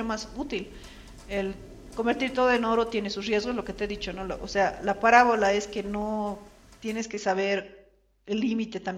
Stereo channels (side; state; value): both; identical; correlation 1.00